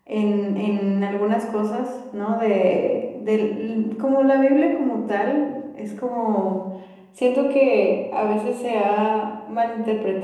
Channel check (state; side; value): identical; both; correlation 1.00